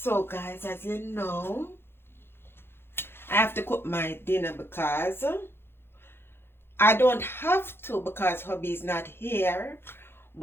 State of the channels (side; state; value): right; late; 0.11 ms